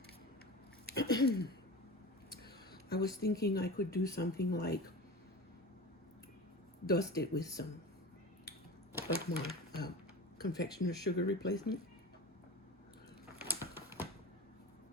I was thinking I could do something like dust it with some of my confectioner's sugar replacement,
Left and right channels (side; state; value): both; normal; correlation 0.31